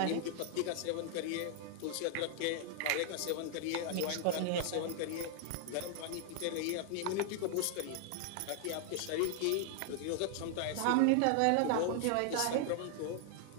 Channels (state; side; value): different; both; correlation 0.00